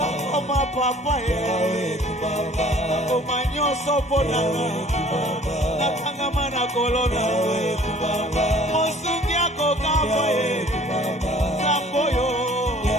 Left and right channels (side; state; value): both; normal; correlation 0.52